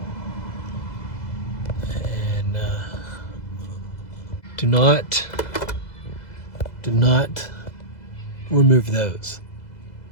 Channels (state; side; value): late; right; 2.0 ms